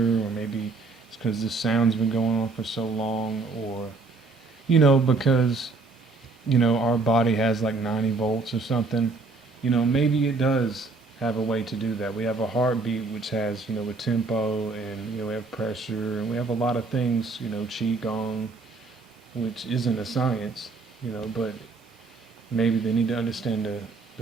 or maybe it's because this sound's been going on for so long, or, because, our body has like 90 volts or something, maybe it does have a way to do that. We have a heartbeat which has, a tempo, and, we have pressure, and we have a lot of things, qigong, which isn't a science, but maybe they need to understand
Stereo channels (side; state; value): left; quieter; 3.9 dB